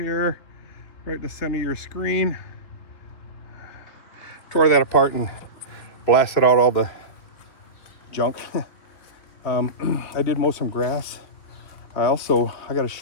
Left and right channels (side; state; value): right; late; 3.5 ms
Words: right in the center of your screen. Tore that apart and blasted out all the junk. I did mow some grass. I got to